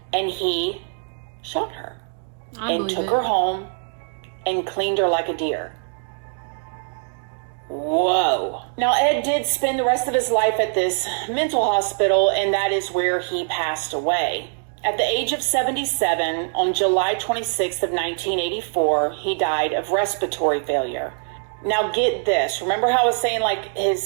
and he shot her and took her home and cleaned her like a deer. Whoa. Now, Ed did spend the rest of his life at this mental hospital, and that is where he passed away. At the age of 77, on July 26th of 1984, he died of respiratory failure. Now, get this. Remember how I was saying, like,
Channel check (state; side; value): silent; left; digital silence